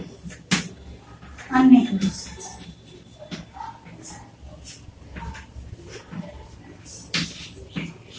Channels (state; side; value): identical; both; correlation 1.00